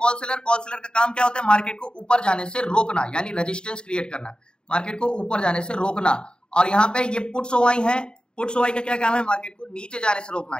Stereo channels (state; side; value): late; right; 0.049 ms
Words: सेलर। कॉल सेलर का काम क्या होता है, मार्केट को ऊपर जाने से रोकना, यानी रेजिस्टेंस क्रिएट करना, मार्केट को ऊपर जाने से रोकना। और यहाँ पे ये पुट्स ओआई है, पुट्स ओआई का क्या काम है, मार्केट को नीचे जाने से रोकना,